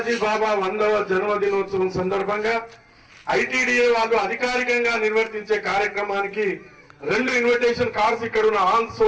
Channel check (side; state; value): both; identical; correlation 1.00